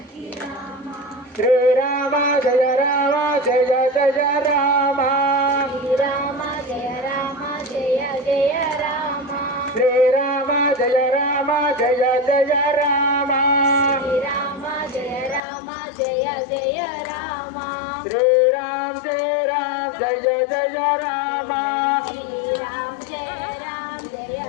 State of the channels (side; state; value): right; drops out; at 15.4 s